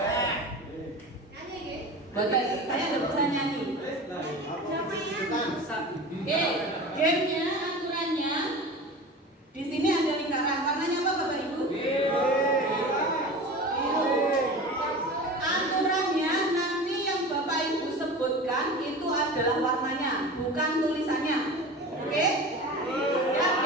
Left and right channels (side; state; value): both; normal; correlation 0.33